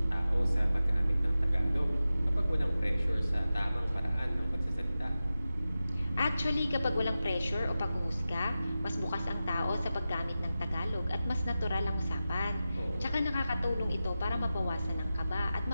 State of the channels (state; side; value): inverted; both; correlation -0.93